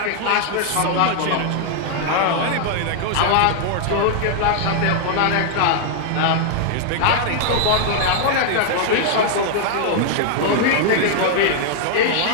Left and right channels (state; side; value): different; both; correlation 0.00